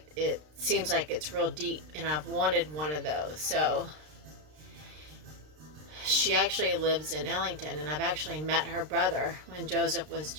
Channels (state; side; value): late; left; 33 ms